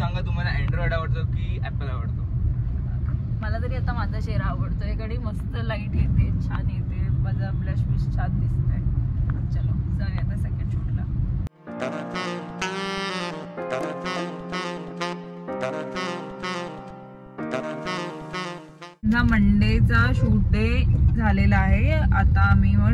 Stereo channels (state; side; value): identical; both; correlation 1.00